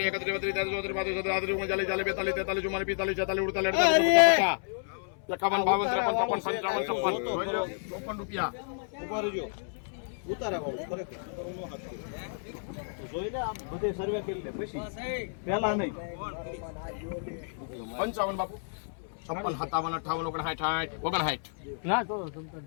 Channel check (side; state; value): right; silent; 57 dB below the other